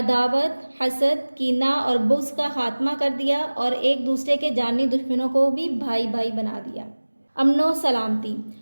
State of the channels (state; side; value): inverted; both; correlation -1.00